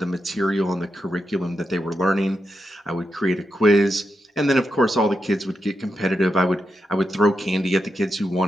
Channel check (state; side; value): normal; both; correlation 0.86